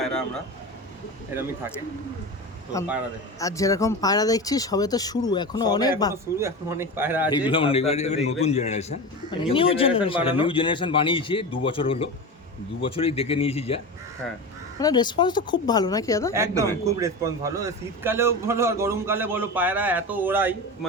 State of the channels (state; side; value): normal; both; correlation 0.26